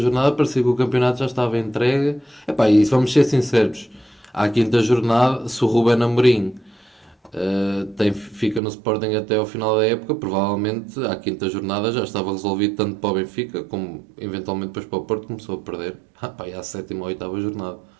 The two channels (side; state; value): left; drops out; at 8.6 s